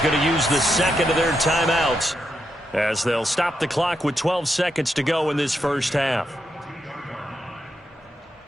to use the 2nd of their timeouts as they'll stop the clock with 12 seconds to go in this first half.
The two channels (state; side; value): normal; both; correlation 0.83